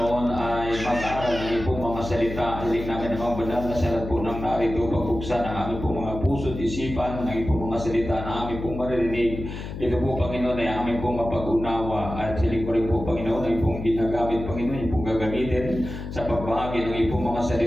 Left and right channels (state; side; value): noise; left; hum, 8 dB below the sound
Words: ay mag-aaral ng pong mga salita. Hiling namin ang mga banal na salat po ng narito, pagbuksan ang aming pong mga puso at isipan, ng pong mga salita na aming pong maririnig. Ito po, Panginoon, ay aming pong mapag-unawa. At hiling ko rin po, Panginoon, ay pong ginagamit, Panginoon, yung pong gagamitin sa pagbahagi ng pong mga